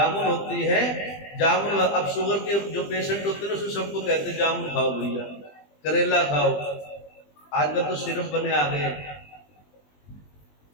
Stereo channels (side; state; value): right; late; 20 ms